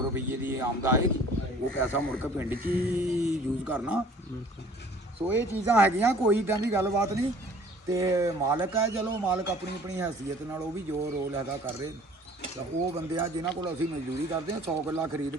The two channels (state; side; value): normal; both; correlation 0.52